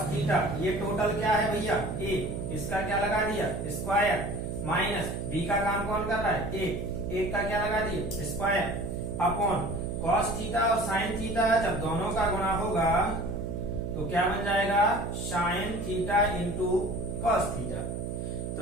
थीटा, ये टोटल क्या है भैया ए, इसका क्या लगा दिया स्क्वायर, माइनस बी का काम कौन कर रहा है एक का क्या लगा दिए स्क्वायर, अपॉन कॉस थीटा और साइन थीटा जब दोनों का गुणा होगा तो क्या बन जाएगा sine theta into cos theta.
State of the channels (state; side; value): noise; right; hum, 4 dB below the sound